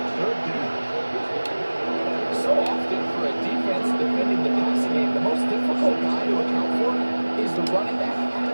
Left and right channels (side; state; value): both; inverted; correlation -1.00